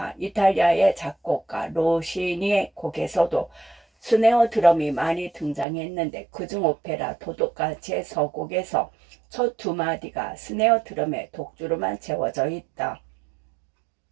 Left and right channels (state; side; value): drops out; left; at 5.7 s